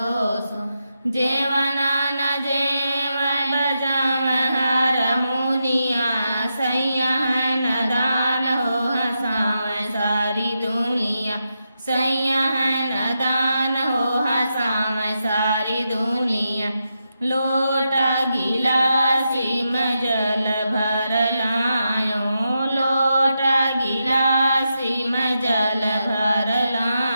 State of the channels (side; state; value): both; inverted; correlation -0.86